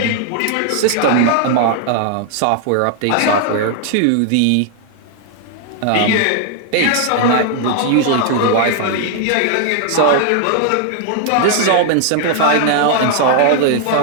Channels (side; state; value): both; different; correlation 0.00